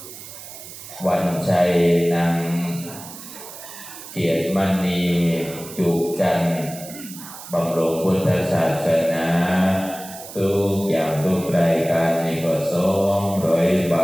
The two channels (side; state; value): right; noise; hiss, 14 dB below the sound